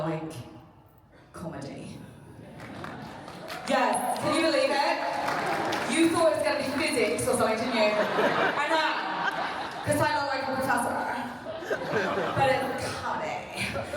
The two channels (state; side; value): identical; both; correlation 1.00